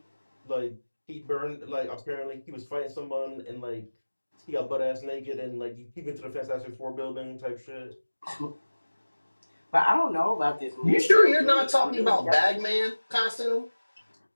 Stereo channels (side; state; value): both; inverted; correlation -1.00